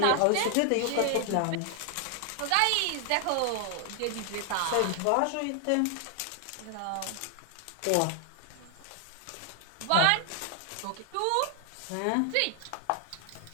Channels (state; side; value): different; both; correlation 0.00